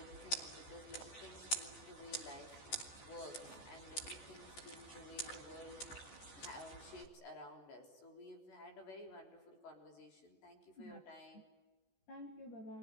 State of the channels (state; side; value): late; right; 14 ms